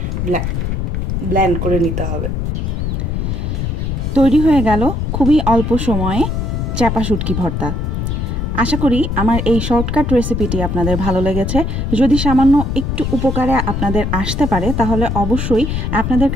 ব্লেন্ড করে নিতে হবে। তৈরি হয়ে গেল খুবই অল্প সময়ে চাপা শুটকি ভর্তা। আশা করি আমার এই শর্টকাট রেসিপিটি আপনাদের ভালো লেগেছে। যদি সামান্য একটু উপকারে আপনাদের আসতে পারে তাহলে অবশ্যই আপনাদের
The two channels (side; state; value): left; noise; rumble, 1 dB below the sound